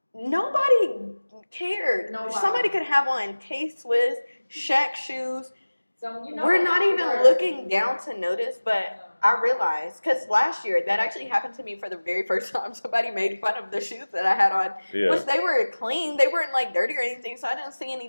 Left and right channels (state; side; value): inverted; both; correlation -1.00